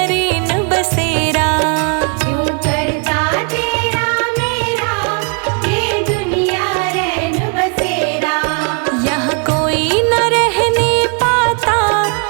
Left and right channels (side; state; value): left; quieter; 36.9 dB